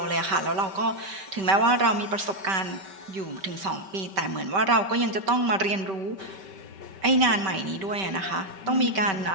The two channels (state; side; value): late; left; 5.2 ms